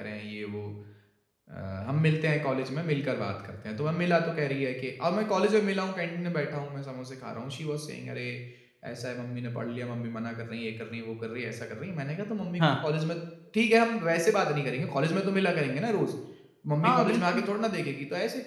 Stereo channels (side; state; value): both; identical; correlation 1.00